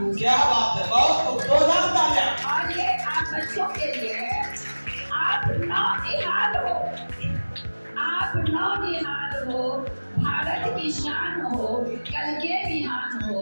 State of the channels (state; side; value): inverted; both; correlation -1.00